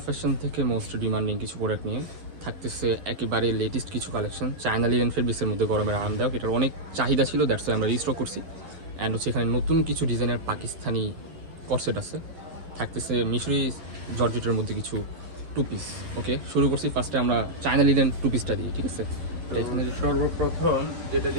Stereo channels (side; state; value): left; late; 11 ms